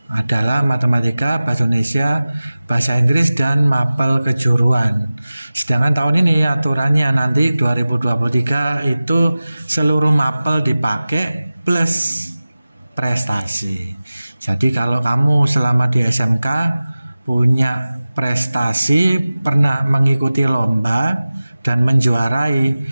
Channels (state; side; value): inverted; both; correlation -0.97